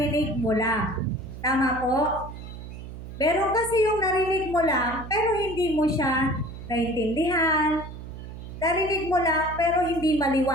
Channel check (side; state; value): right; noise; hum, 11 dB below the sound